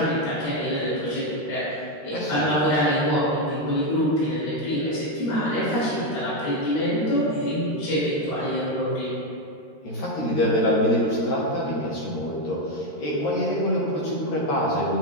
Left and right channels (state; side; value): late; right; 13 ms